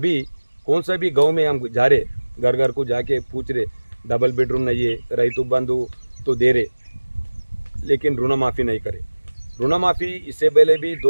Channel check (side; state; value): both; inverted; correlation -1.00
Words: कौन सा भी गांव में हम जा रहे, घर घर को जाके पूछ रहे, डबल बेडरूम नहीं है, रैतु बंधु तो दे रहे, लेकिन ऋण माफ़ी नहीं करे। ऋण माफ़ी इससे पहले भी